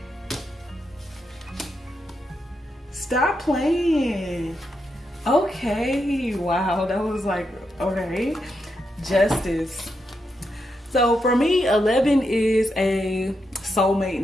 Stop playing. Okay. Wow. That was like, okay. Justice. So for me, 11 is a soulmate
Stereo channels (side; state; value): both; normal; correlation 0.83